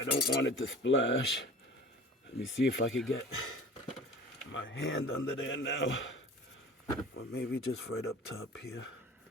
don't want it to splash. Let me see if I can get my hand under there now. Or maybe just right up top here.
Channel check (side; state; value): both; normal; correlation 0.41